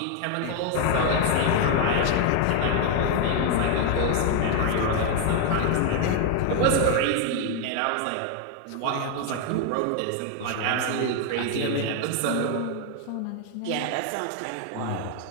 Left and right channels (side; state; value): both; different; correlation 0.00